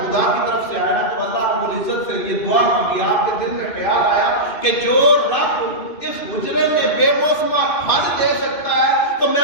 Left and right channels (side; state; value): right; late; 2.5 ms